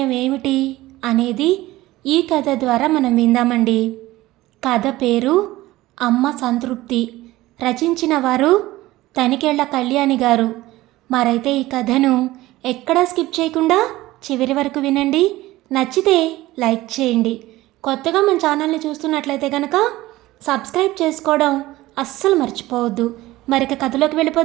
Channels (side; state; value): left; quieter; 17.6 dB